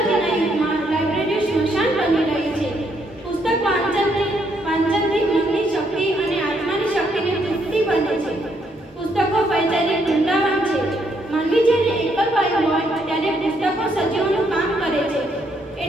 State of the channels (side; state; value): both; normal; correlation 0.73